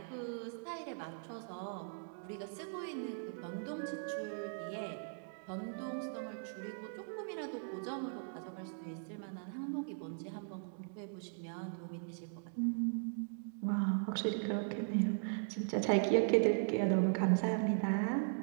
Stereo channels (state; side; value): silent; left; digital silence